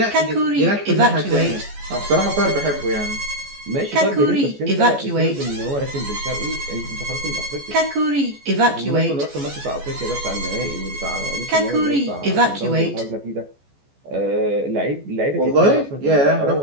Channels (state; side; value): late; left; 14 ms